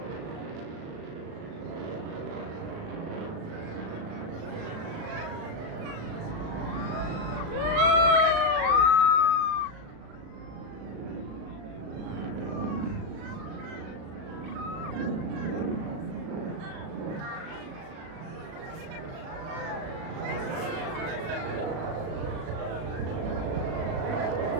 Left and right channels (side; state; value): left; late; 37 ms